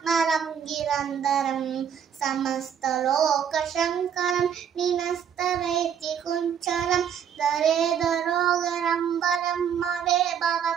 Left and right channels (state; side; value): quieter; left; 8.3 dB